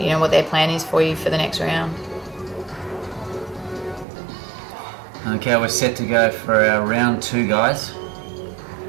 what their plan is for you for the next round. Okay, we're set to go for our round 2, guys,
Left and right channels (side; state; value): left; drops out; at 4.0 s